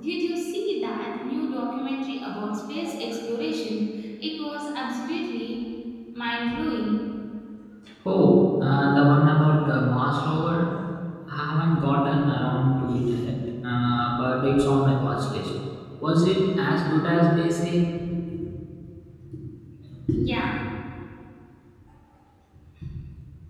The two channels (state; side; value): identical; both; correlation 1.00